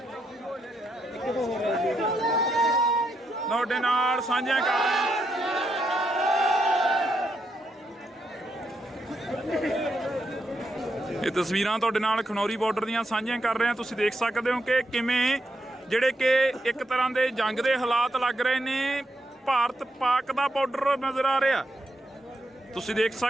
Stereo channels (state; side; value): normal; both; correlation 0.81